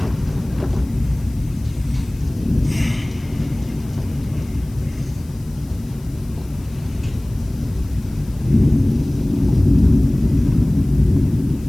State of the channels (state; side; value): noise; left; hiss, 26 dB below the sound